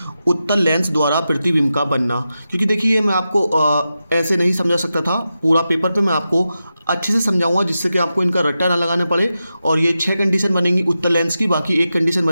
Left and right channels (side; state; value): both; inverted; correlation -0.91